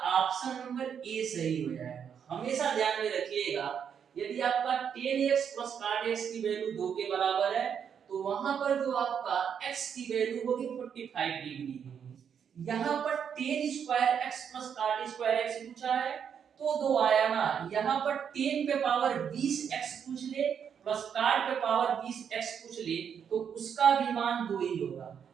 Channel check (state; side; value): quieter; left; 7.7 dB